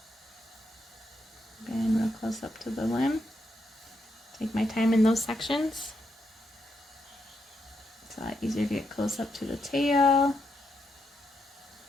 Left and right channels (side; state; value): both; normal; correlation 0.81